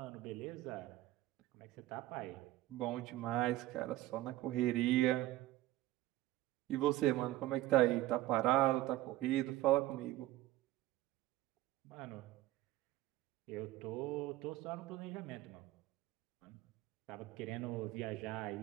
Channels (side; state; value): left; quieter; 16.1 dB